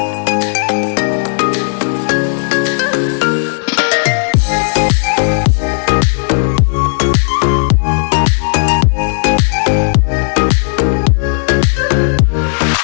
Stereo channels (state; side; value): silent; right; digital silence